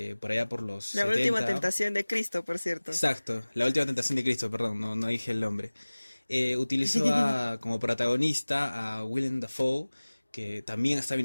por allá por los La 70. última tentación de Cristo, por cierto. Exacto, la última tentación de Cristo, perdón, no dije el nombre. Utilizó como protagonista a Willem Dafoe, que también estaba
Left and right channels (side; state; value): both; inverted; correlation -1.00